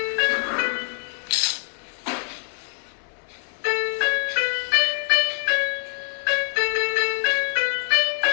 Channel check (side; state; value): right; silent; digital silence